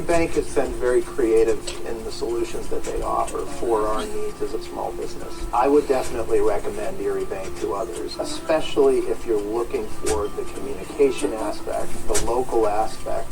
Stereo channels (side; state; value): both; identical; correlation 1.00